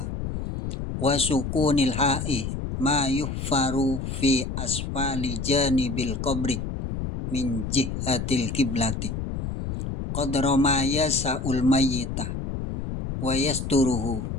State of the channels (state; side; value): noise; left; rumble, 5 dB below the sound